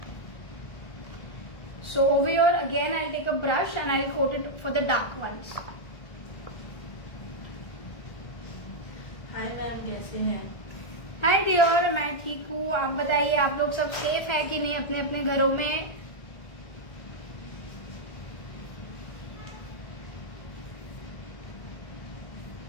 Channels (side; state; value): right; late; 1.4 ms